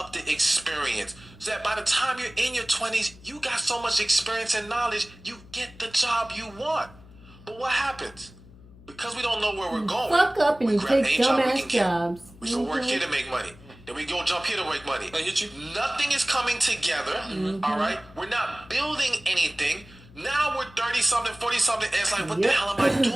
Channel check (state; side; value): noise; left; hum, 22 dB below the sound